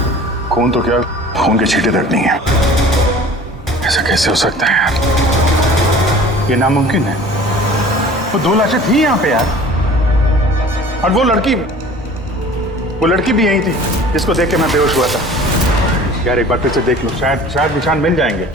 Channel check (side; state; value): both; normal; correlation 0.45